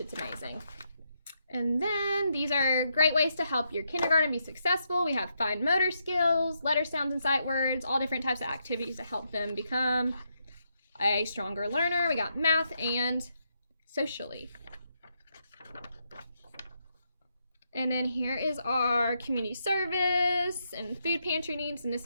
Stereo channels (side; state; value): both; inverted; correlation -0.80